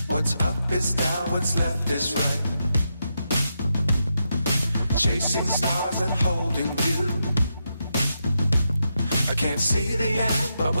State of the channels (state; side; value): inverted; both; correlation -0.84